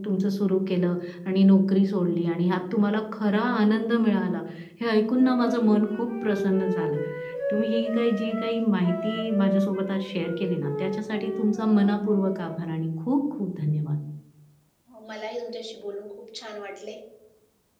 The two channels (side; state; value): both; identical; correlation 1.00